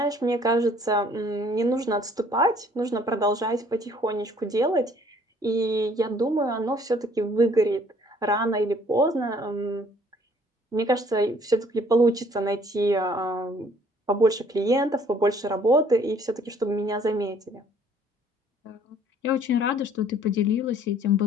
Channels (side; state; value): both; normal; correlation 0.59